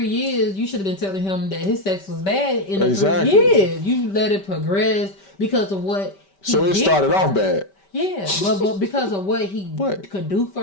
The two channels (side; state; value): right; late; 5.2 ms